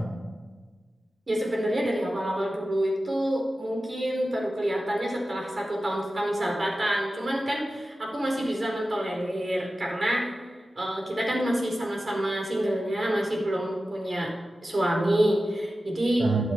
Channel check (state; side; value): normal; both; correlation 0.94